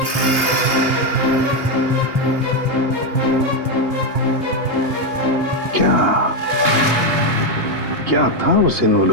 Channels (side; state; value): left; late; 2.8 ms